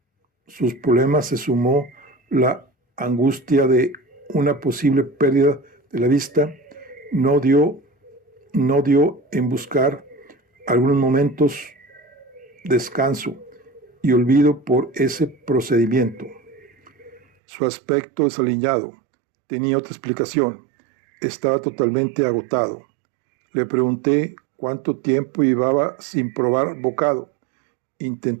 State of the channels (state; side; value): drops out; left; at 17.2 s